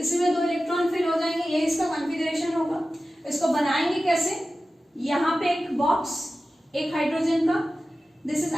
2 इलेक्ट्रॉन फिल हो जाएंगे, ये इसका कॉन्फ़िगरेशन होगा। इसको बनाएंगे कैसे, यहाँ पे एक बॉक्स, एक हाइड्रोजन का, दिस इज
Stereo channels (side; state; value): both; normal; correlation 0.95